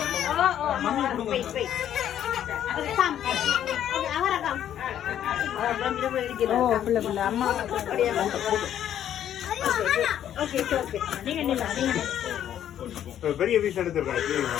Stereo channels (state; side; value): quieter; right; 10.6 dB